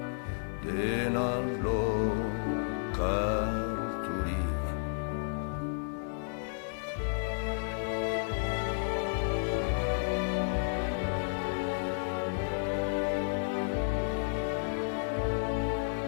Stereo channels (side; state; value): right; silent; digital silence